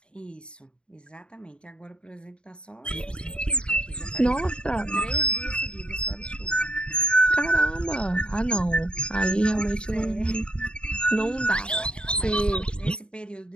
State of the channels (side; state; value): right; late; 0.053 ms